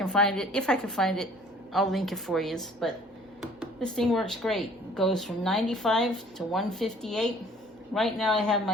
find it. If I can find it, I'll link it for you. But this thing works great. It goes from 95 to 158. Right now I have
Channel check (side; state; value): both; normal; correlation 0.53